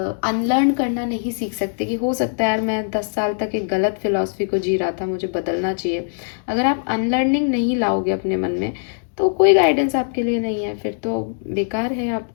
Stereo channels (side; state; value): right; silent; digital silence